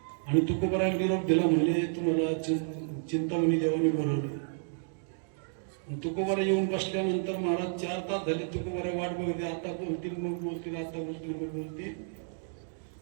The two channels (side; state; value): left; silent; digital silence